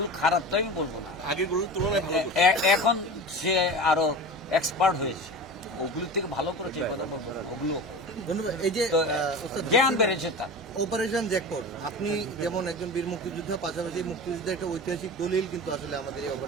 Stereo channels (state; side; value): normal; both; correlation 0.32